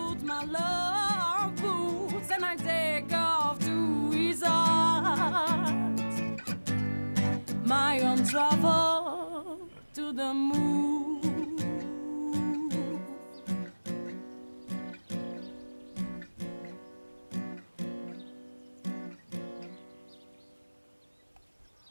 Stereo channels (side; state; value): both; inverted; correlation -1.00